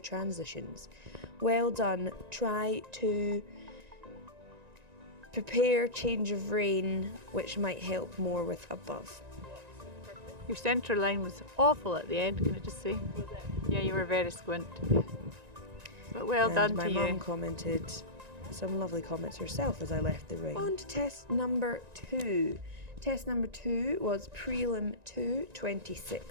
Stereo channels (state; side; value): late; left; 1.9 ms